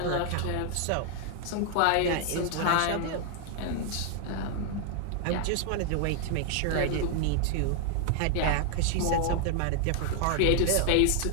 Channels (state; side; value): different; both; correlation 0.00